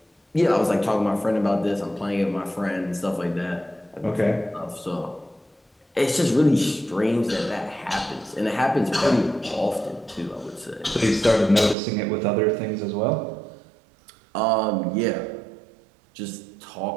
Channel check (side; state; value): left; drops out; at 11.8 s